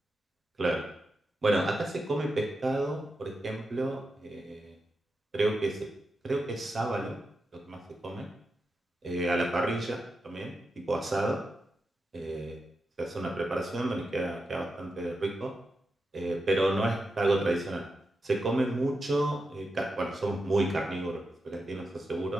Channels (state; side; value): normal; both; correlation 0.88